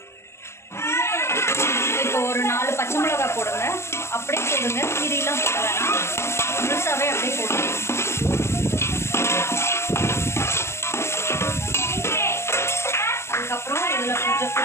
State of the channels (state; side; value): late; right; 0.13 ms